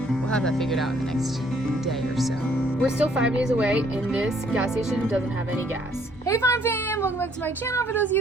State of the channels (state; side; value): normal; both; correlation 0.64